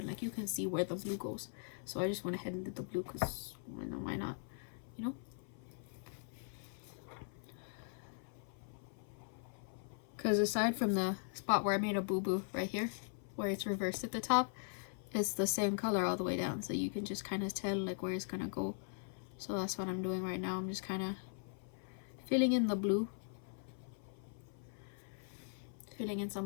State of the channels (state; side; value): silent; right; 51 dB below the other